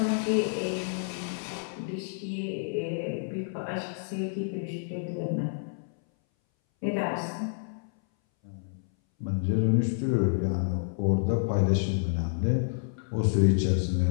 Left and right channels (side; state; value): right; silent; 59 dB below the other